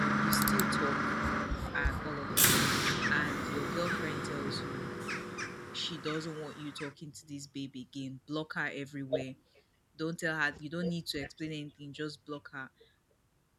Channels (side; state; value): both; identical; correlation 1.00